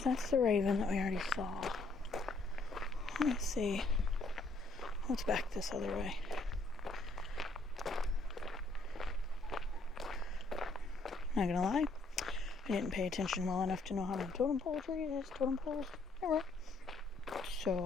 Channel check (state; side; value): quieter; right; 3.1 dB